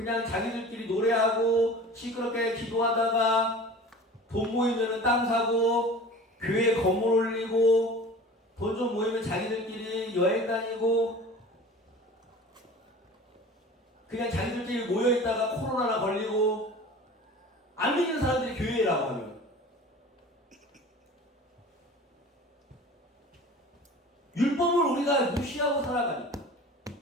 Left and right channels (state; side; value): normal; both; correlation 0.40